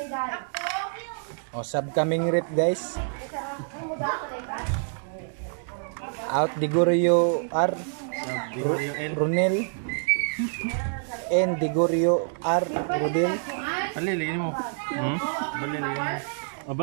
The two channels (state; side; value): silent; left; digital silence